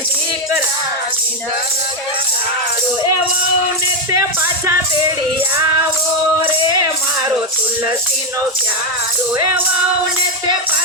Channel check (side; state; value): both; normal; correlation 0.05